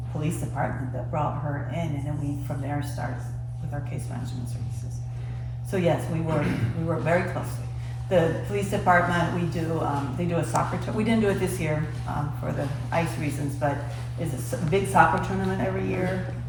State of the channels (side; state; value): both; identical; correlation 1.00